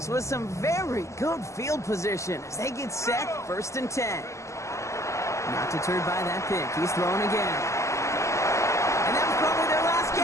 with some very good field position as they get set, 1st and 10. Not deterred by that pick. He's throwing again. And that was probably their last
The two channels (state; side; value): late; right; 0.14 ms